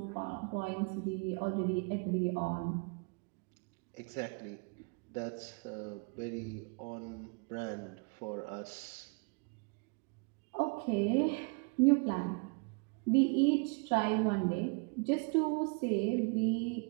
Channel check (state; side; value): quieter; left; 32.5 dB